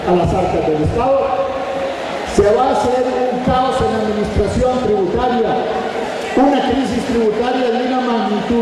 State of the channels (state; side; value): identical; both; correlation 1.00